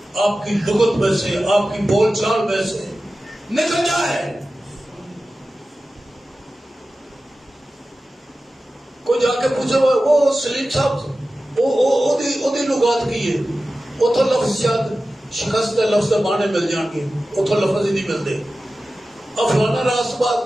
آپ کی لغت میں سے، آپ کی بول چال میں سے نکل جائے۔ کوئی جا کے پوچھے وہ سلیم صاحب وہ لغات کی ہے، وہ تو لفظ شاید شکست کے لفظ کے معنی مل جان گے، وہ تو لفظ ہی نہیں ملتے۔ اب فلانا راست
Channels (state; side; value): normal; both; correlation 0.94